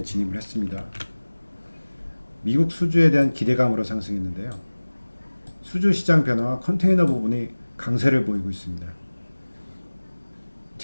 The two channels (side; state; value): both; inverted; correlation -1.00